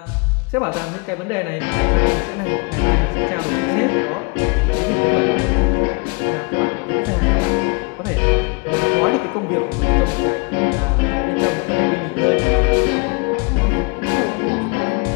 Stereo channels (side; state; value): right; quieter; 30.9 dB